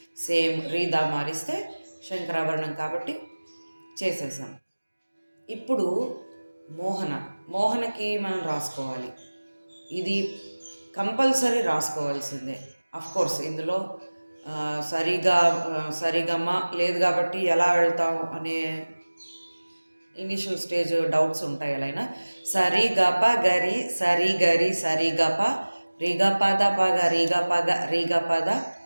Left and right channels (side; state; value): both; inverted; correlation -1.00